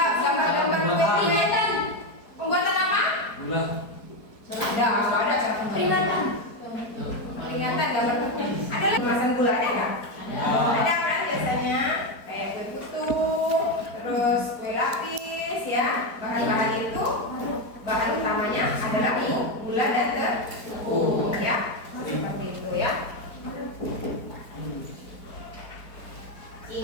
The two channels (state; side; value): late; right; 4.4 ms